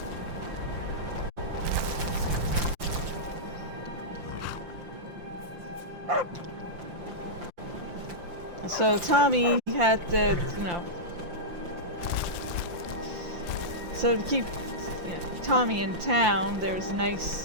So Tommy had to, so to keep Tommy in town, there was a nice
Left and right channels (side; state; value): left; late; 5.8 ms